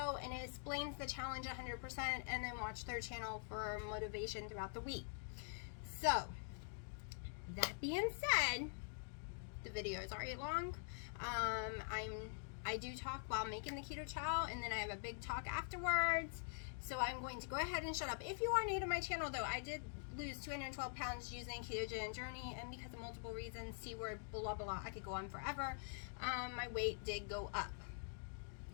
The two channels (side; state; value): right; silent; digital silence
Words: and it explains the challenge 100%, and then watch their channel for motivation throughout the week. So, that being said, the video is already long. I do talk while making the keto chow, and then I have a big talk afterwards. So I'm going to go ahead and shut up. If you are new to my channel, though, I did lose 212 pounds using ketogenic journey, and because of multiple reasons, C word, blah, blah, I could go on forever. My weight did go up